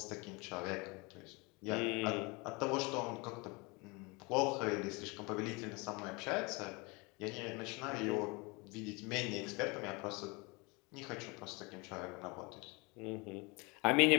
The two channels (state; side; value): quieter; right; 27.5 dB